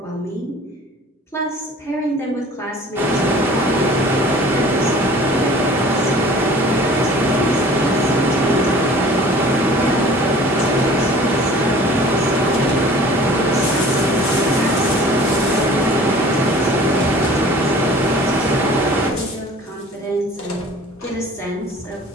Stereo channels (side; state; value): both; normal; correlation 0.47